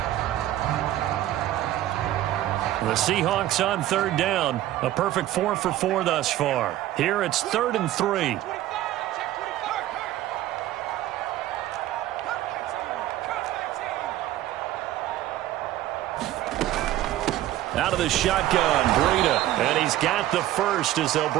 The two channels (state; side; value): quieter; left; 14.0 dB